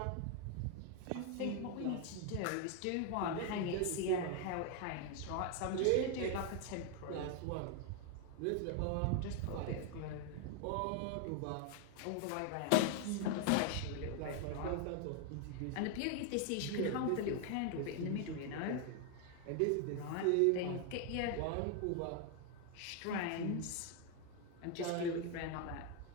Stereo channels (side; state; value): both; different; correlation 0.01